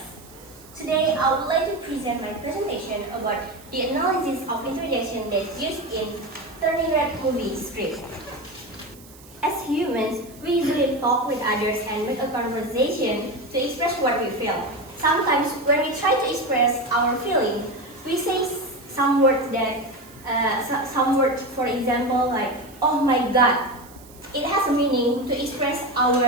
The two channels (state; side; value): noise; right; hiss, 23 dB below the sound